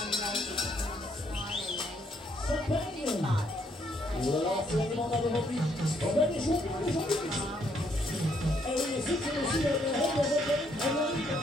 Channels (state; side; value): normal; both; correlation 0.71